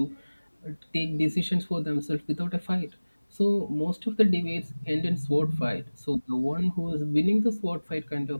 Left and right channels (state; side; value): inverted; both; correlation -1.00